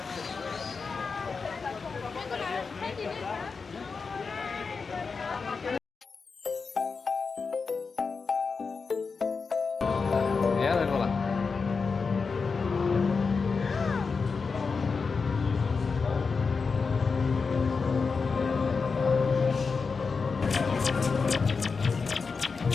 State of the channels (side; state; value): right; quieter; 4.9 dB